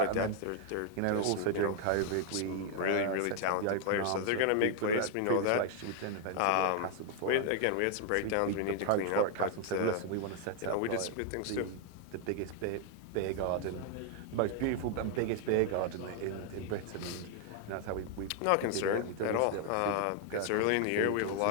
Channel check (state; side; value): different; both; correlation 0.00